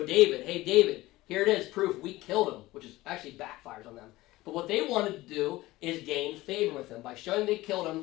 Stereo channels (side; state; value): right; quieter; 18.4 dB